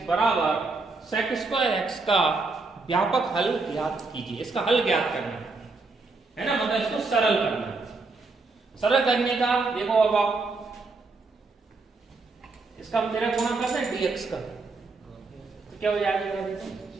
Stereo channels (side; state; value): left; quieter; 3.8 dB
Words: बराबर sec²x का व्यापक हल ज्ञात कीजिए। इसका हल ज्ञात करना है ना, मतलब इसको सरल करना है। सरल करने का देखो, अब आप इसका हम तेरा गुणा करते हैं dx का, तो क्या हो जाएगा, देखो